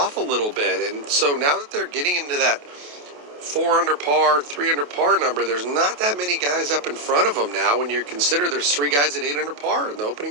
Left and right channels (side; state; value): left; late; 28 ms